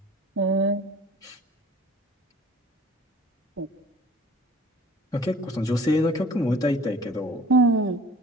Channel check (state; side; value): normal; both; correlation 0.48